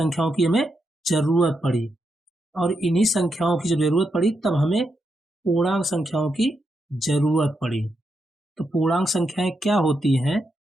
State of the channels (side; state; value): both; normal; correlation 0.83